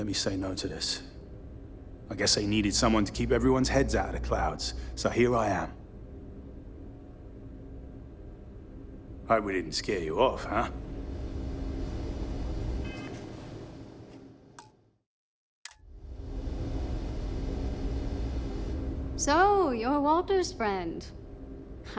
me say no to this. I guess they needed someone to keep everyone's heads out of the clouds, so here I am. Hope we didn't scare you off, huh? So, you're Walter's friend.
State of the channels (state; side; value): identical; both; correlation 1.00